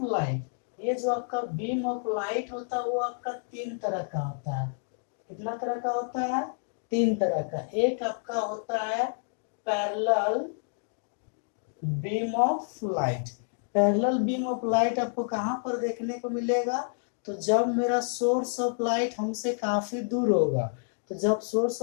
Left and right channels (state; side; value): silent; right; digital silence